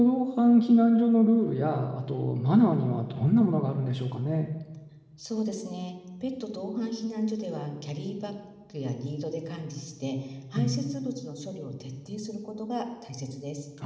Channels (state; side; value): identical; both; correlation 1.00